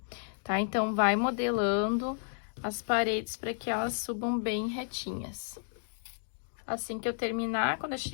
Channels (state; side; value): silent; right; digital silence